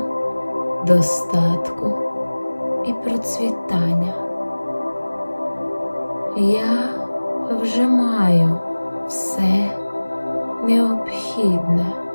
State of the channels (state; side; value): inverted; both; correlation -1.00